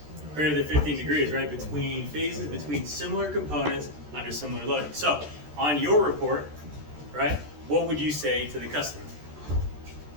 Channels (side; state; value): left; late; 13 ms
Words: Greater than 15 degrees, right? Between phases, between similar components under similar loading. So, on your report, right, what would you say to the customer?